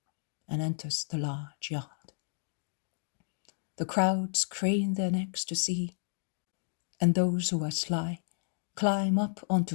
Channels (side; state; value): right; silent; digital silence